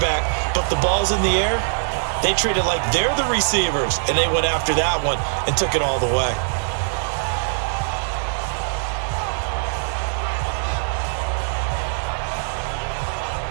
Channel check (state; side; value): silent; left; digital silence